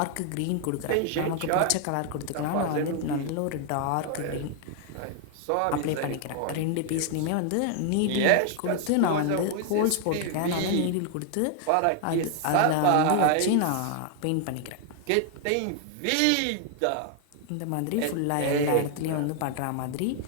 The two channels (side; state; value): both; different; correlation 0.00